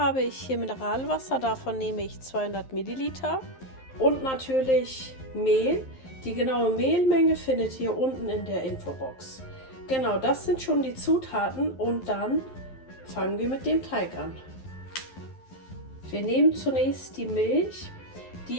ich hier Mineralwasser, davon nehme ich 200 Milliliter und natürlich Mehl. Die genaue Mehlmenge findet ihr unten in der Infobox. Genau, das sind schon die Zutaten und dann fangen wir mit dem Teig an. Wir nehmen zunächst die Milch.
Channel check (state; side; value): late; right; 11 ms